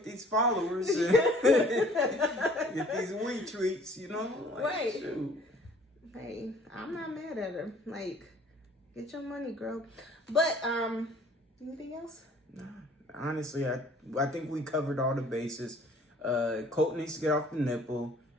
these followers and get these wee treats, Like, Right. shoot. Hey, I'm not mad at her. Like, get your money, girl. But anything else? Nah. Honestly, I think we covered all the bases. Colt needs to get off the nipple.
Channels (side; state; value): both; normal; correlation 0.54